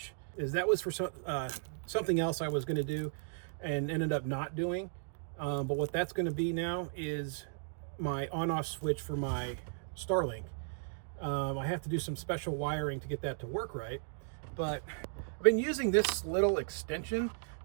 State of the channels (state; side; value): silent; left; digital silence